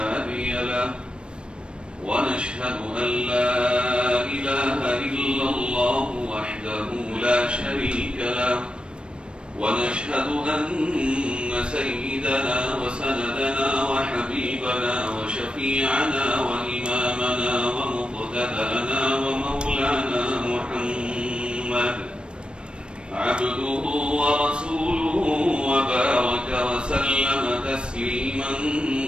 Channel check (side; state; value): left; late; 0.056 ms